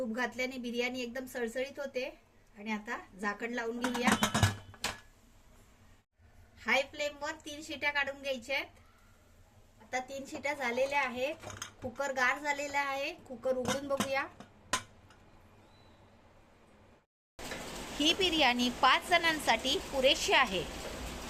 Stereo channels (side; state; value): both; identical; correlation 1.00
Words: घातल्याने बिर्याणी एकदम सळसळीत होते। आणि आता झाकण लावून घेऊया। हाय फ्लेमवर 3 शिट्या काढून घ्यायच्या आहेत। आता 3 शिट्या झालेल्या आहेत। कुकर गार झालेला आहे। कुकर उघडून बघूया। ही बिर्याणी 5 जणांसाठी पुरेशी आहे।